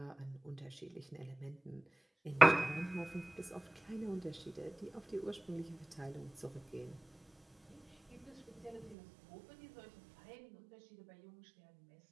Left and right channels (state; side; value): drops out; left; at 9.0 s